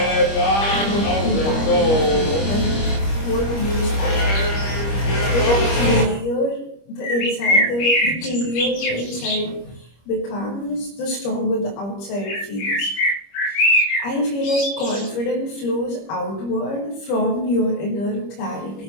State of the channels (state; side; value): late; right; 25 ms